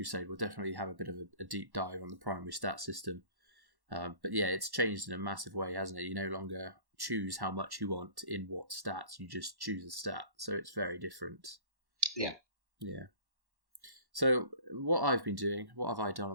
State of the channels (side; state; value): left; late; 1.1 ms